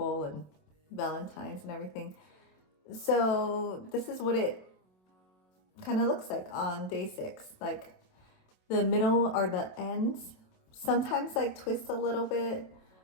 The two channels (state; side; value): late; right; 27 ms